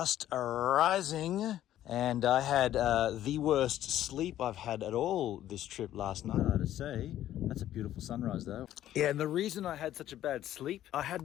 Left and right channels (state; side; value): quieter; right; 12.5 dB